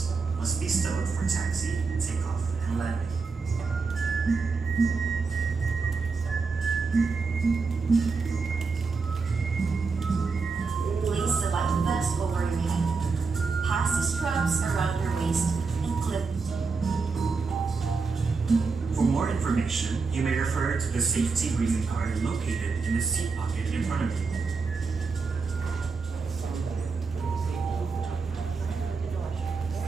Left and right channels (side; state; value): left; quieter; 4.6 dB